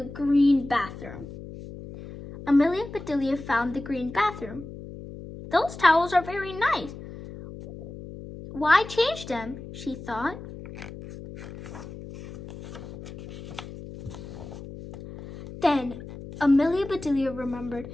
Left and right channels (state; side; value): noise; left; hum, 13 dB below the sound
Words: green bathroom. Amelia Bedelia found the green bathroom. Those towels are very nice. Why change them, she thought. Then Amelia Bedelia remembered